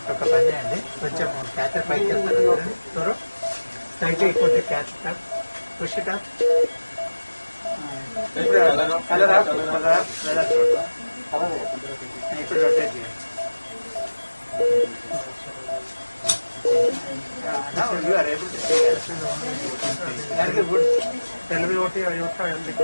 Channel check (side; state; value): both; inverted; correlation -1.00